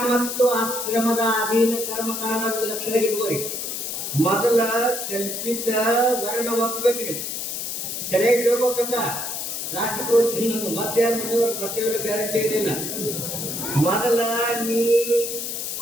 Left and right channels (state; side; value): noise; left; hiss, 4 dB below the sound